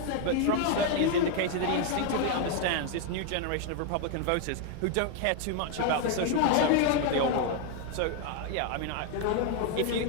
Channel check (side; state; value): both; different; correlation 0.01